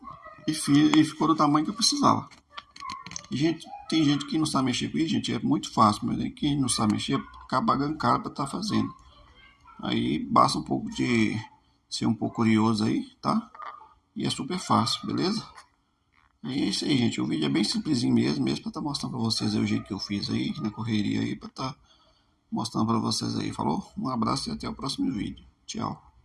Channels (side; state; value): both; identical; correlation 1.00